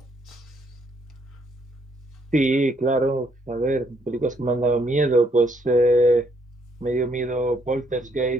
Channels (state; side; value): normal; both; correlation 0.70